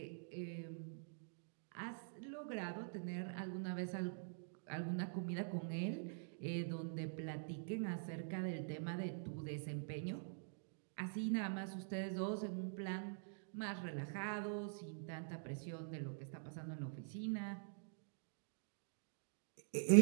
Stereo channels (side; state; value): left; silent; digital silence